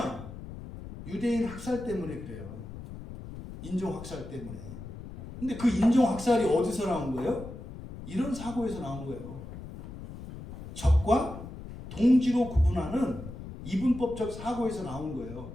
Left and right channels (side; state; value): left; noise; rumble, 12 dB below the sound